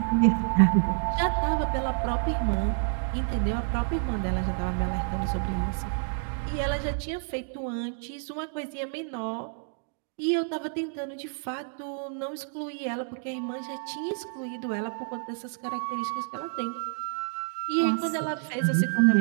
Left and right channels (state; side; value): silent; left; 59 dB below the other